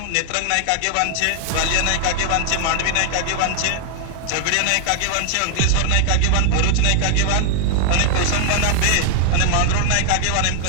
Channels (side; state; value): both; different; correlation 0.00